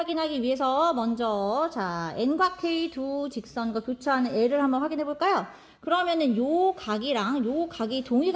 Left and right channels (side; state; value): both; identical; correlation 1.00